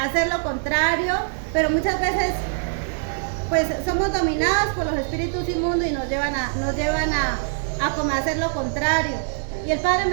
lo contrario, pero muchas veces pues somos dominados por los espíritus inmundos y nos llevan a como hacer lo contrario. Y el Padre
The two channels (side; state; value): left; silent; 58 dB below the other